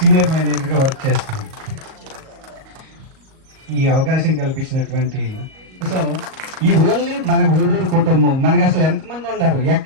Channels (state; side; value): late; left; 38 ms